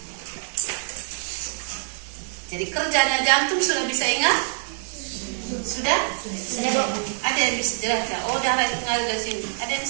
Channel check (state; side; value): silent; left; digital silence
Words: Jadi kerjanya jantung sudah bisa ingat? Sudah? Ada yang bisa jelaskan? Oh, darah itu mengalir dari sini. Ada yang